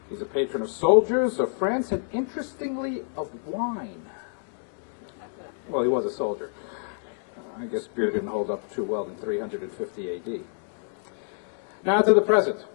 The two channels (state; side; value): silent; right; digital silence